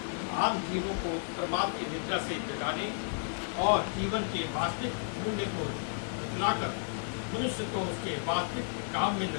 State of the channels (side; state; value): right; silent; digital silence